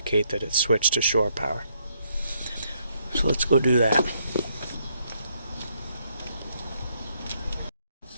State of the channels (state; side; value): inverted; both; correlation -0.74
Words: that it's switched to shore power. So let's go do that.